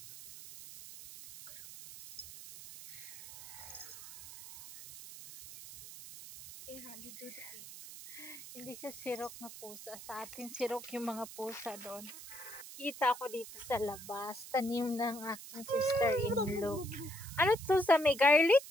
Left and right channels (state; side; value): noise; right; hiss, 14 dB below the sound